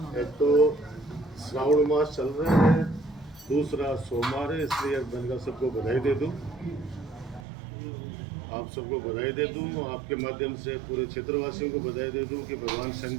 तो श्रावण मास चल रहा है, दूसरा सोमवार है, इसलिए मैंने कहा सबको बधाई दे दूं। आप सबको बधाई दे दूं, आपके माध्यम से पूरे क्षेत्रवासियों को बधाई दे दूं कि भगवान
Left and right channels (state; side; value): drops out; left; at 7.5 s